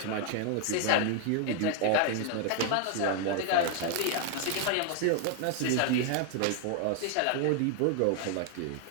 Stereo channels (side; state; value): both; different; correlation 0.00